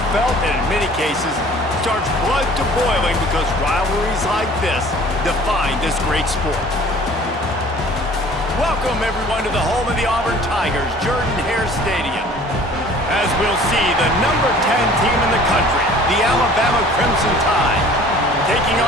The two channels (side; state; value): both; normal; correlation 0.49